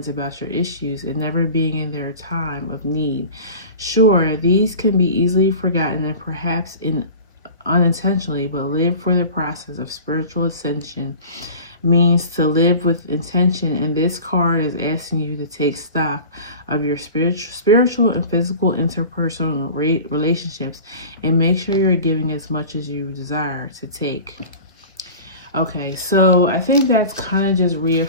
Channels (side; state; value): both; inverted; correlation -0.38